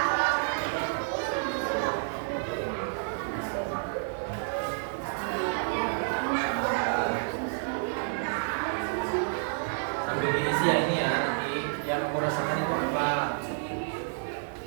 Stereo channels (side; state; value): left; silent; digital silence